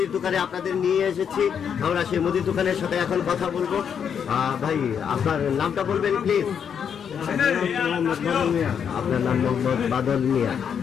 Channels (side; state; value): right; quieter; 7.6 dB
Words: দোকানে আপনাদের নিয়ে এসেছি। আমরা সেই মুদির দোকানের সাথে এখন কথা বলবো। ভাই আপনার নামটা বলবেন প্লিজ? আপনার নাম মোহাম্মদ বাদল মিয়া।